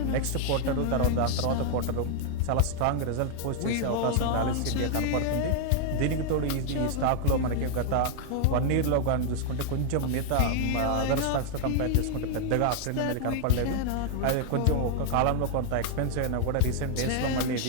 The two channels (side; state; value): both; different; correlation 0.00